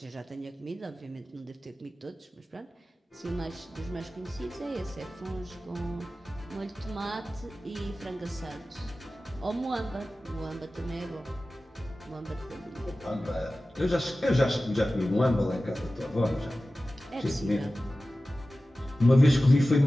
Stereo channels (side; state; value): both; normal; correlation 0.96